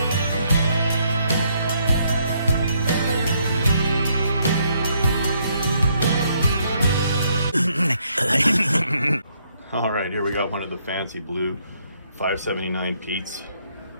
All right, here we got one of the fancy blue 579 Pete's.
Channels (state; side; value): inverted; both; correlation -0.72